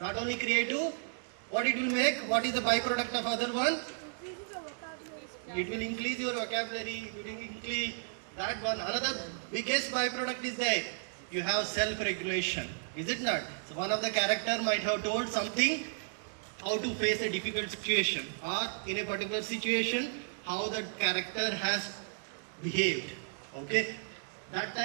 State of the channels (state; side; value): silent; left; digital silence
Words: Not only creative, what it will make? What is the byproduct of other one? It will increase your vocabulary, it will increase that one. Another biggest byproduct is that you have self-regulation. Is it not? So one of the character might have told something, how to face a difficult situation, or in a particular situation, how that character has behaved. Okay? That